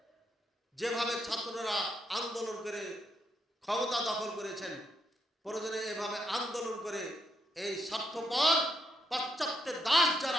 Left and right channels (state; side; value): normal; both; correlation 0.78